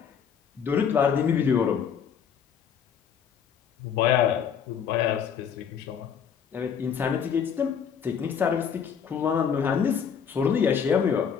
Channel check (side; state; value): right; quieter; 7.4 dB